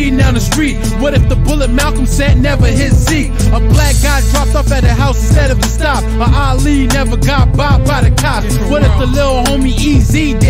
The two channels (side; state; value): both; identical; correlation 1.00